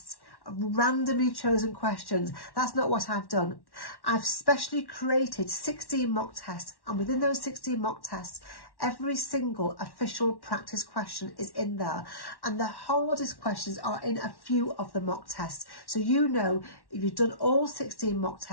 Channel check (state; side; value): late; right; 1.1 ms